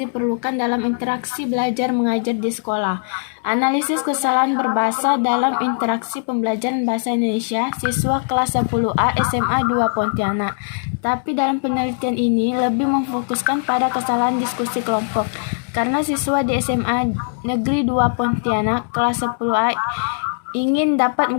dalam interaksi belajar mengajar di sekolah. Analisis kesalahan berbahasa dalam interaksi pembelajaran bahasa Indonesia siswa kelas 10A SMA 2 Pontianak. Tapi dalam penelitian ini lebih memfokuskan pada kesalahan diskusi kelompok. Karena siswa di SMA Negeri 2 Pontianak kelas 10A ingin dapat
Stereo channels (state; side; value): silent; right; digital silence